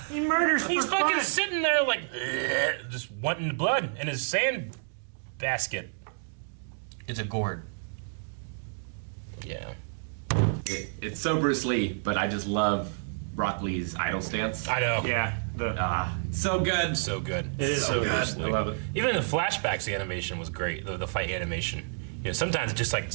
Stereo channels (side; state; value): left; silent; digital silence